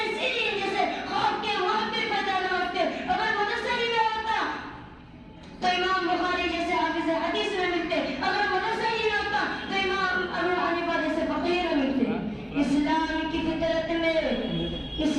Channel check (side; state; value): both; identical; correlation 1.00